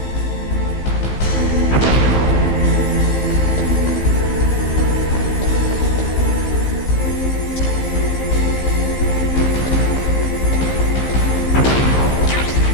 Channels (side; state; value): right; late; 15 ms